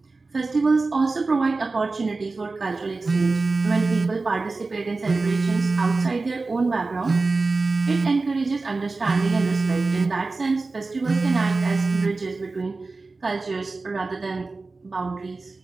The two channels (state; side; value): quieter; left; 3.7 dB